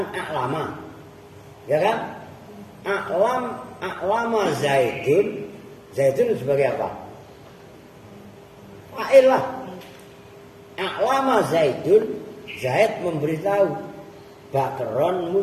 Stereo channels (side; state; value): both; identical; correlation 1.00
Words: a'lama. Ya kan? A'lama Zaidun. Zaidun sebagai apa? Fa'il lah. A'lama Zaidun. Zaid memberitahu Bakron